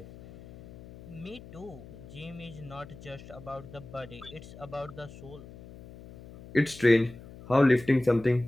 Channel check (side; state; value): left; noise; hum, 17 dB below the sound